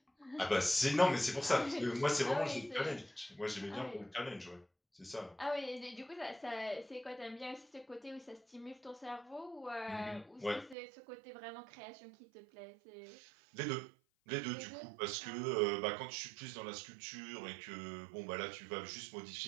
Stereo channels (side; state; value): left; drops out; at 10.8 s